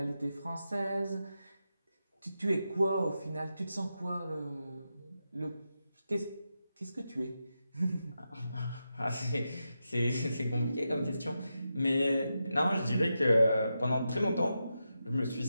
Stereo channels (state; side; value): inverted; both; correlation -0.88